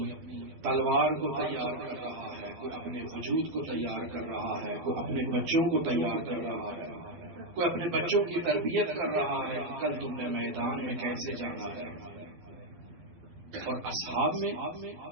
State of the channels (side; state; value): left; late; 12 ms